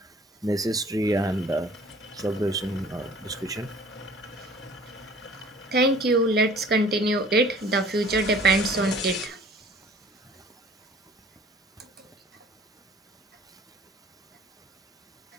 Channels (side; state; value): both; normal; correlation 0.51